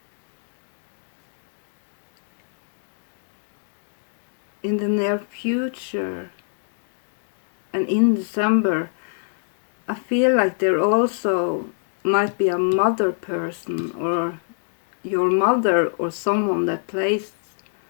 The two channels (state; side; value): silent; right; digital silence